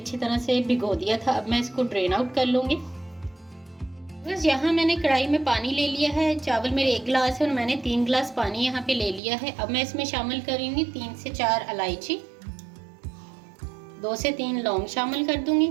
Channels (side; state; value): left; drops out; at 9.2 s